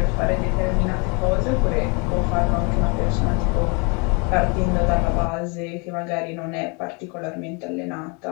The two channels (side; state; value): right; quieter; 32.3 dB